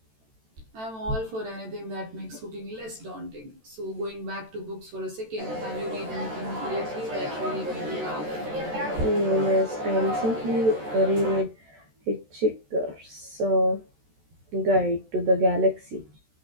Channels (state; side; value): late; left; 14 ms